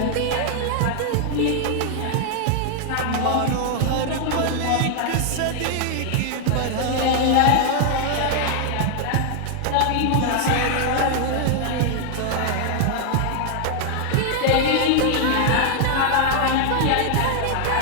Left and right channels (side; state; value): both; different; correlation 0.00